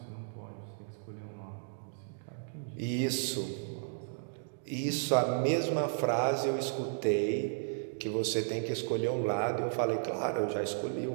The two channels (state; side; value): silent; left; digital silence